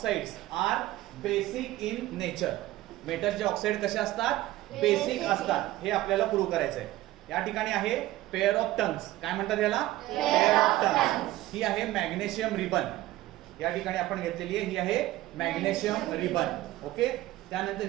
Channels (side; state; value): left; quieter; 16.4 dB